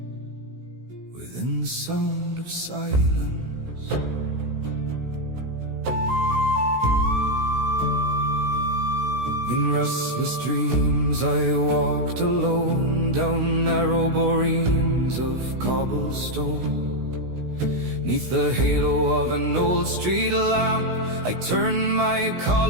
within the sound of silence. In restless dreams I walked alone down narrow boreens of cobblestone. Neath the halo of an old street lamp, I turned my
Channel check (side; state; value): left; late; 16 ms